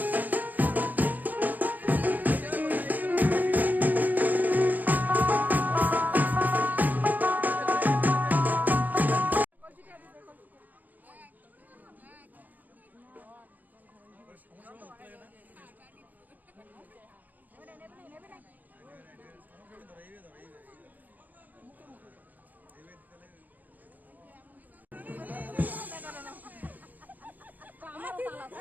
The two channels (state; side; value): late; left; 0.082 ms